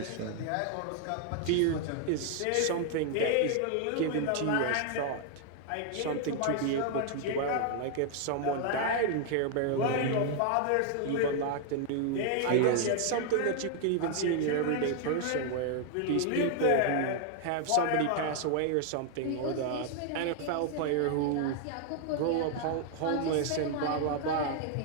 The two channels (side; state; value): both; different; correlation 0.00